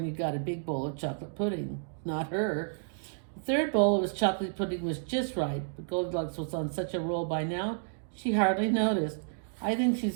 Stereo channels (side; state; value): left; silent; digital silence